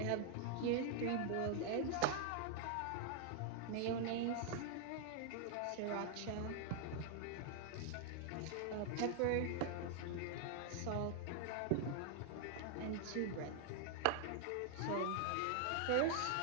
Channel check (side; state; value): both; different; correlation 0.00